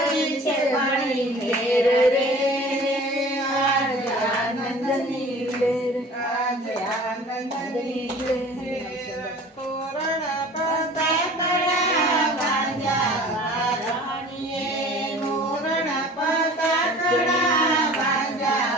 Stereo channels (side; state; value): both; normal; correlation 0.45